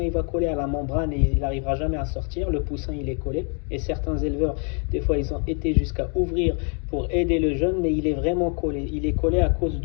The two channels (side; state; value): right; quieter; 39.6 dB